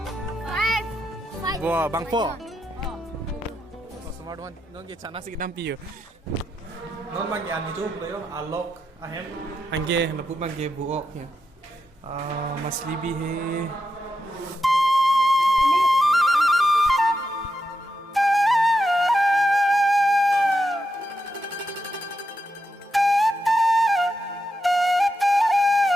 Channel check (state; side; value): normal; both; correlation 0.85